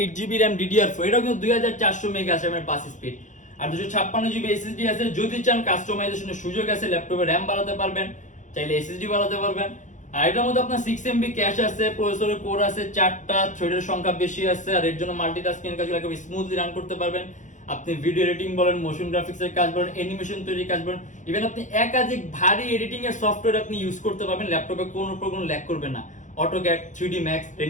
RAM, DDR4, এটাও কিন্তু 2400 মেগাহার্টজ এর বাস স্পিড আর 256GB SSD আছে। যদি চান কাস্টমাইজেশনের সুযোগ আছে, ল্যাপটপে র্যাম বাড়াতে পারবেন, চাইলে SSD বাড়াতে পারবেন। আর এটার মধ্যে আপনার 6MB ক্যাশ আছে, প্রসেসরের কোর আছে 4টা, থ্রেডের সংখ্যা বেশি আছে। আর এর জন্য মাল্টিটাস্কিং এর কাজগুলো একেবারে স্মুথলি রান করতে পারবেন। আপনি ভিডিও এডিটিং বলেন, মোশন গ্রাফিক্সের কাজ বলেন, অ্যানিমেশন তৈরির কাজ বলেন, ইভেন আপনি একাধিক ভারী এডিটিং এর সফটওয়্যার আপনি ইউজ করতে পারবেন, ল্যাপটপে কোনো ল্যাগ করবে না। অটোক্যাড, 3D Max,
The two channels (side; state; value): right; late; 0.36 ms